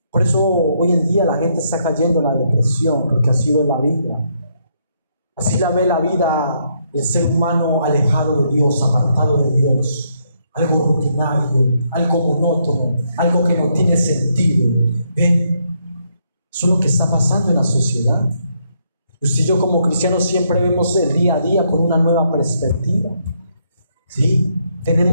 Por eso hoy en día la gente está cayendo en la depresión, porque así ve la vida. Así la ve la vida el ser humano alejado de Dios, apartado de Dios. Algo rutinario, algo monótono, algo que no tiene sentido. ¿Ven? Eso es lo que está pasando en la sociedad. Usted y yo como cristianos siempre vemos el día a día con una nueva perspectiva. ¿Sí?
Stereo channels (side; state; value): both; inverted; correlation -0.75